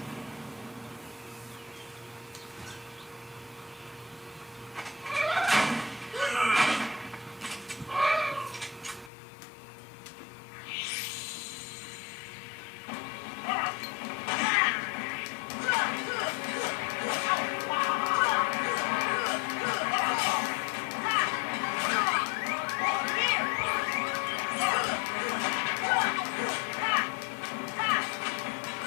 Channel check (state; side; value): drops out; right; at 9.1 s